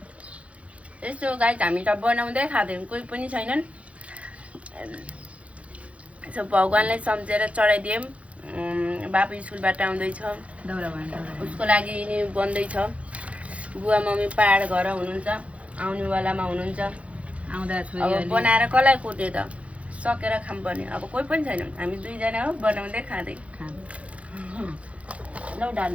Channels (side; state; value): left; late; 0.064 ms